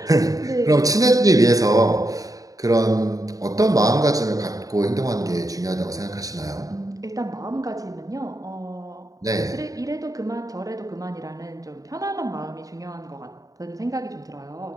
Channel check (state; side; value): late; left; 0.17 ms